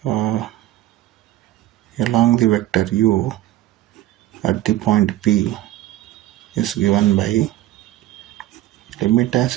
along the vector u at the point P is given by limit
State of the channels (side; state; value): left; quieter; 14.6 dB